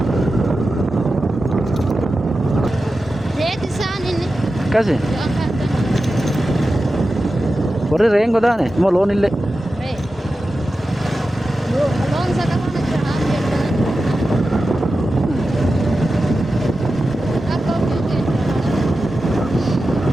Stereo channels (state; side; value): normal; both; correlation 0.92